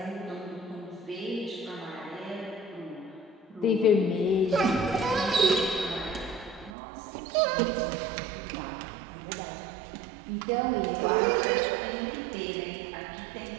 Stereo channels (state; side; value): drops out; left; at 6.7 s